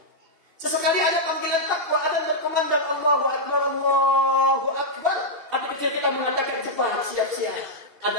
Sesekali ada panggilan takwa, ada berkumandang Allahu Akbar, Allahu Akbar. Hati kecil kita mengatakan cepat, siap-siap.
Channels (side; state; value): left; late; 2.7 ms